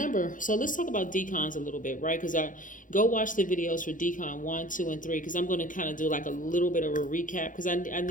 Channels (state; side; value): late; right; 0.38 ms